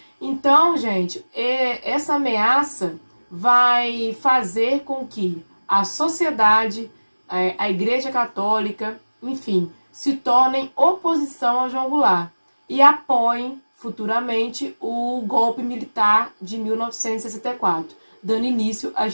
Então, gente, essa ameaça vai fazer com que a sociedade, a Igreja Católica, enfim, se tornem oposição ao João Goulart e apoiem futuramente o golpe militar de 1964, dando início à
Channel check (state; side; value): inverted; both; correlation -1.00